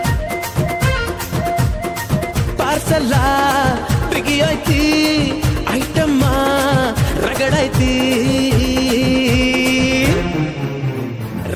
ಪಾರ್ಸಲ ಬಿಗಿ ಐತಿ ಐಟಮ್ಮ ರಗಡೈತಿ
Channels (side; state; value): both; identical; correlation 1.00